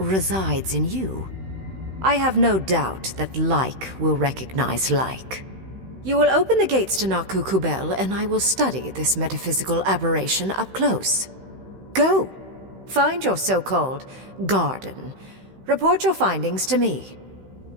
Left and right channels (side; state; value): left; late; 16 ms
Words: in you. I have no doubt that like will recognize like. You will open the gates to Naku Kubel, and I will study this metaphysical aberration up close. Go. Find your so-called garden. Report your findings to me.